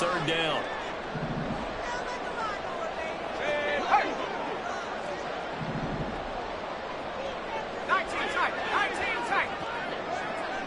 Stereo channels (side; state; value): both; identical; correlation 1.00